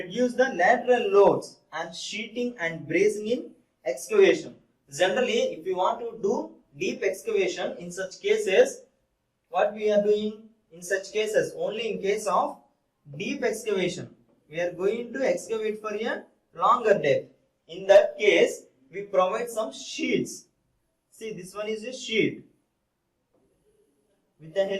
the lateral loads and sheeting and bracing in excavation. Generally, if we want to do deep excavation, in such cases, what we are doing in such cases, only in case of deep excavation, we are going to excavate for a longer depth. In that case, we provide some sheets. See, this one is a sheet with the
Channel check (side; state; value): both; identical; correlation 1.00